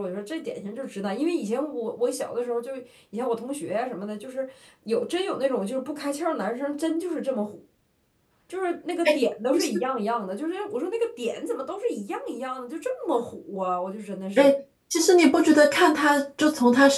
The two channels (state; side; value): identical; both; correlation 1.00